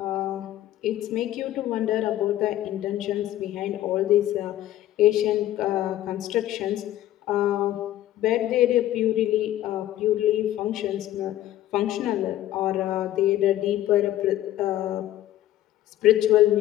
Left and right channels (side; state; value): right; quieter; 13.7 dB